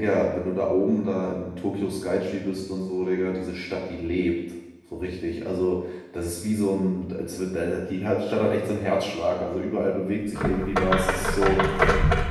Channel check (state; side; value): identical; both; correlation 1.00